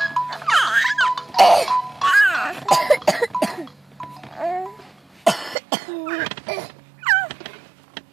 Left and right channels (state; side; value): drops out; left; at 5.6 s